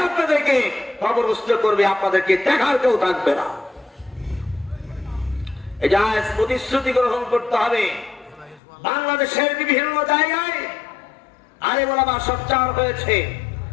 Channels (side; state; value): right; drops out; at 8.6 s